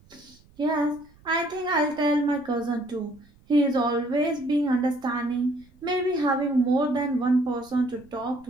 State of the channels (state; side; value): noise; right; rumble, 28 dB below the sound